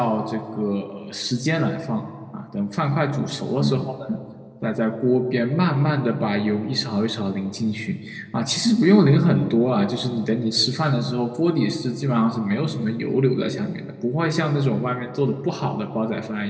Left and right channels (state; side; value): identical; both; correlation 1.00